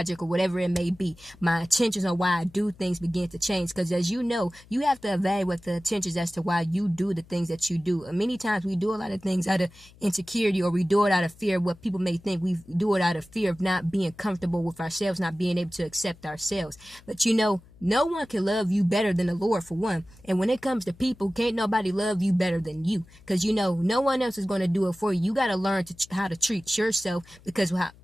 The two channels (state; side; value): noise; left; hum, 25 dB below the sound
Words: or whatever it may be. My intentions on why I do things begin to change, because as you know, you have to evaluate the intentions as to why you do the things that you do. And many times we do a lot of things out of insecurity, or we do it out of fear of what people may think. We do it out of fear of not being comfortable with ourselves, not being able to accept ourselves. But you know, no one can love you better than the Lord, for one. And when it comes to people, can't nobody love you better than you, because you know no one else is going to do it for you. You got to learn how to treat yourself, because